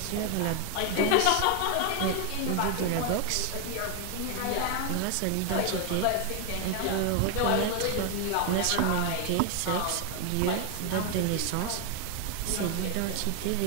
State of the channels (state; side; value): different; both; correlation 0.01